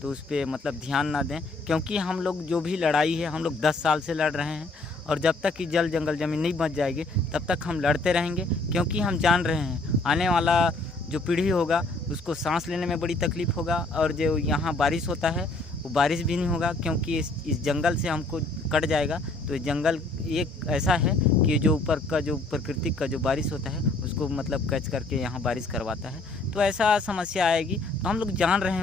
तो उस पर मतलब ध्यान ना दें, क्योंकि हम लोग जो भी लड़ाई है हम लोग 10 साल से लड़ रहे हैं। और जब तक कि जल जंगल ज़मीन नहीं बच जाएगी तब तक हम लड़ते रहेंगे, क्योंकि हम जान रहे हैं आने वाला जो पीढ़ी होगा उसको सांस लेने में बड़ी तकलीफ़ होगा। और जो यहाँ बारिश होता है वो बारिश भी नहीं होगा, क्योंकि इस जंगल से हमको कट जाएगा। तो जंगल एक ऐसा है कि जो ऊपर का जो प्राकृतिक का जो बारिश होता है उसको मतलब कैच करके यहाँ बारिश करवाता है। तो ऐसा समस्या आएगी। तो हम लोग जान रहे हैं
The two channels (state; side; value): quieter; right; 3.1 dB